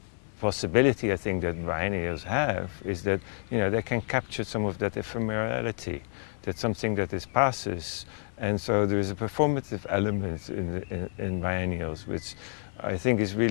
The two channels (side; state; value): right; silent; 59 dB below the other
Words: possibility I think that biennials have is that they can capture some of that ephemerality, that something that passes. And so there is a performative element in biennials, which I think is